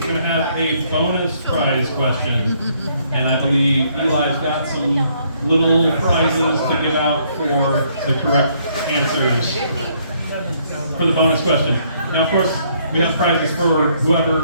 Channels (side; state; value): both; inverted; correlation -0.68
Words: going to have a bonus prize question. And I believe Eli's got some little prizes to give out for the correct answers for the bonus question. Now, of course, we have prizes for